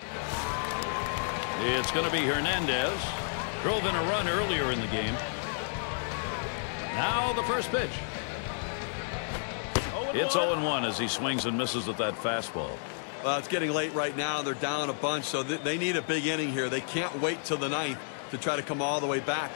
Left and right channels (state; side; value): silent; right; digital silence